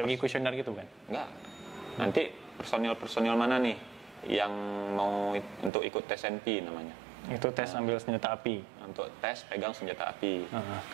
gitu kan? Enggak. Nanti personil mana nih yang mau untuk ikut tes NP namanya. Itu tes ambil senjata api. Untuk tes pegang senjata api.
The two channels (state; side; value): drops out; left; at 5.7 s